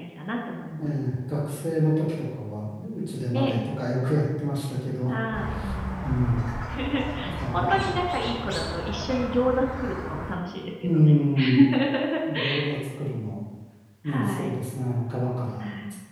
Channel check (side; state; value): both; identical; correlation 1.00